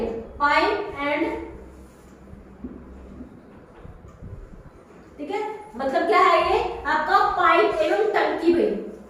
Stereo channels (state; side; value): identical; both; correlation 1.00